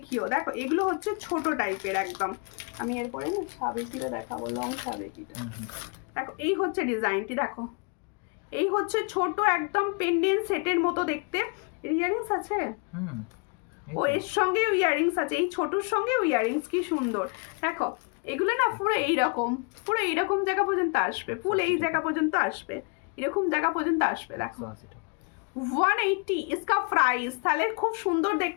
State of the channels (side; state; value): right; quieter; 35.2 dB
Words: দেখো এগুলো হচ্ছে ছোট টাইপের একদম। আমি এরপরে না সাবেকিটা দেখাবো, লং সাবেকিটা। দেখো এই হচ্ছে ডিজাইনটি, দেখো এই হচ্ছে ছোট একদম পেন্ডেন্ট সেটের মতো দেখতে। ইয়াররিংস আছে, ও এর সঙ্গে ইয়াররিংস আছে, এই ছোটর সঙ্গে ইয়াররিংস, কি সুন্দর। দেখো এগুলো না পুরো এইরকম জায়গা পর্যন্ত আসবে, ফুল এই জায়গা পর্যন্ত আসবে, এরকম জায়গা পর্যন্ত আসবে। দেখো 180 इसका प्राइस। তাহলে খুব সুন্দর